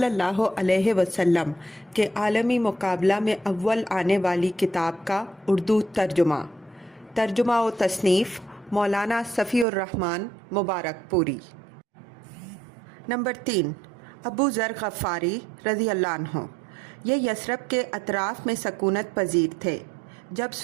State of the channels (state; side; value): drops out; left; at 9.7 s